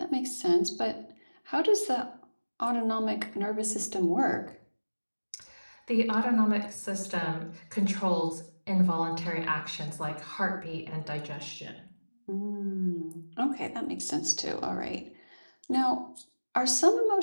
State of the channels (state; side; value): inverted; both; correlation -1.00